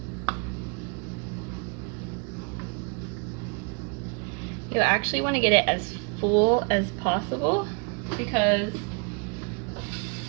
You actually want to get it as full as possible because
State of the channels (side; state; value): left; quieter; 35.4 dB